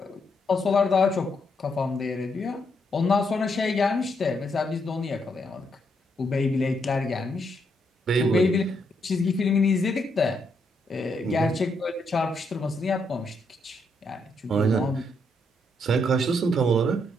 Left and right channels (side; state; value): both; normal; correlation 0.77